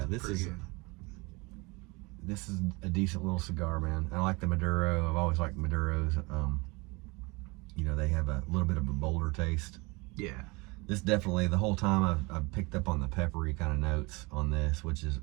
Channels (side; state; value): left; quieter; 26.0 dB